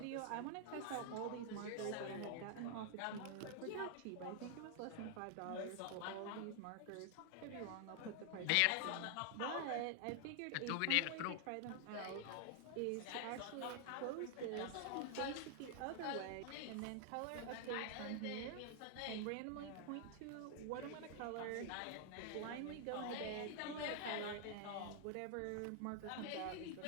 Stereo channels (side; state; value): both; different; correlation 0.00